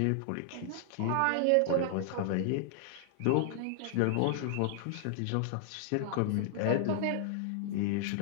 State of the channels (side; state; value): both; different; correlation -0.01